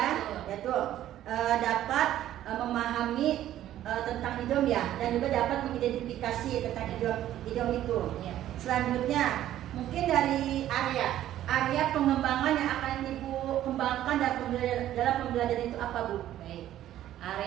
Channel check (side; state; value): left; quieter; 12.6 dB